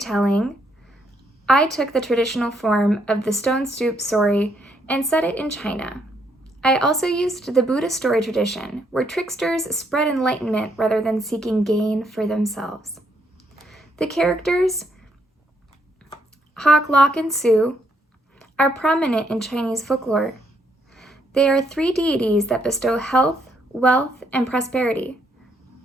I took the traditional form of the stone soup story and set it in China. I also used the Buddhist story tradition, where tricksters spread enlightenment rather than seeking gain for themselves. The characters, Hawk, Lock, and Sue, are prominent in Chinese folklore. They are three deities that bestow health, wealth, and prosperity.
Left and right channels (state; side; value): normal; both; correlation 0.73